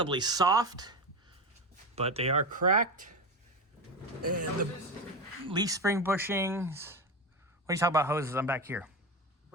soft, but they are cracked. And the leaf spring bushings. What are you talking about hoses? I'm back here.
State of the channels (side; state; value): both; normal; correlation 0.20